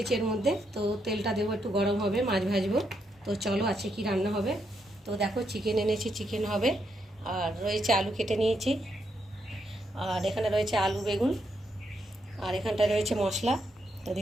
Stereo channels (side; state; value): both; normal; correlation 0.79